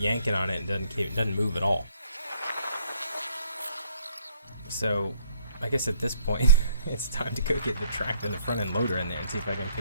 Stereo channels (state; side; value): inverted; both; correlation -0.64